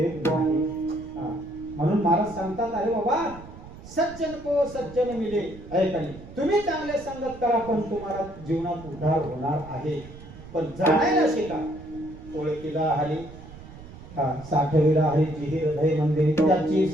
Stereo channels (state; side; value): noise; right; rumble, 16 dB below the sound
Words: नाही. म्हणून महाराज सांगतात अरे बाबा सज्जन को सज्जन मिले. ऐकाने तुम्ही चांगले संगत करा पण तुम्हाला जीवनात उद्धार होणार आहे. पण जाणायला शिका. ओळखीला हरी साठविला हरी जिही हृदय मंदिर त्याची